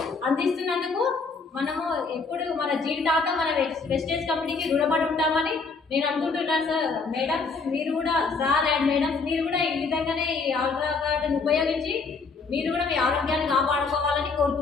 అందిస్తున్నందుకు మనము ఎప్పుడు మన జీవితాంతం మన వెస్టేజ్ కంపెనీకి రుణపడి ఉంటామని నేను అనుకుంటున్నాను. సార్, మేడమ్స్ మీరు కూడా, సార్ అండ్ మేడమ్స్ మీరు కూడా ఈ విధంగానే ఈ ఆల్ట్రాగార్డ్ని ఉపయోగించి మీరు కూడా మీ ఆరోగ్యాన్ని కాపాడుకోవాలని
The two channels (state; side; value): quieter; right; 4.5 dB